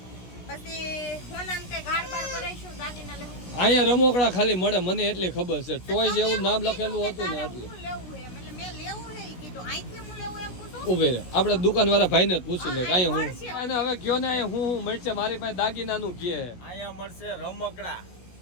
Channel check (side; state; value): right; late; 16 ms